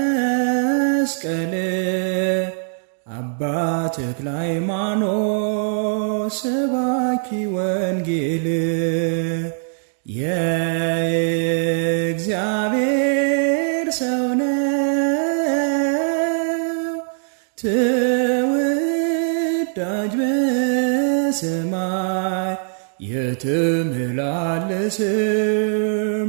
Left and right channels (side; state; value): left; silent; digital silence